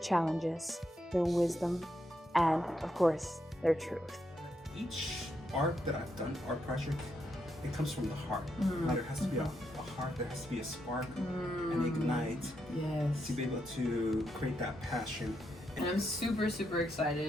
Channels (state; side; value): normal; both; correlation 0.81